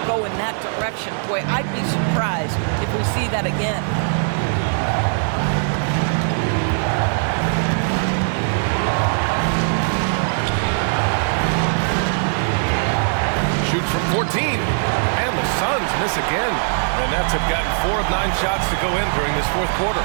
go in that direction. Boy, I'd be surprised if we see that again. Shoots from 14. And the Suns miss again. The Nets have gotten 4 of 9 shots to go in during this fourth quarter.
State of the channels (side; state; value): left; silent; digital silence